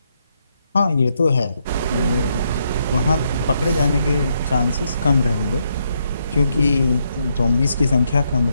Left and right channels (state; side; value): inverted; both; correlation -0.77